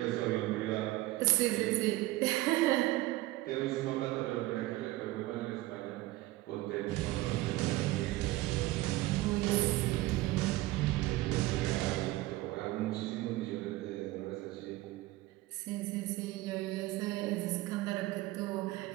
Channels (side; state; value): left; quieter; 18.1 dB